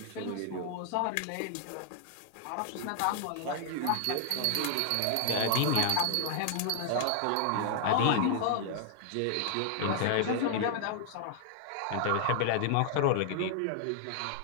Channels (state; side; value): different; both; correlation 0.00